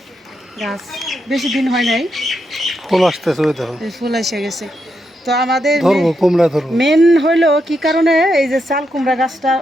গাছ, বেশি দিন হয় নাই, ফুল আসতেছে, ওই দেখো ফুল এসে গেছে। তো আমাদের ধরবো কুমড়া ধরবো। মেন হইলো কি কারণে এই যে চাল কুমড়া গাছটা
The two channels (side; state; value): both; normal; correlation 0.82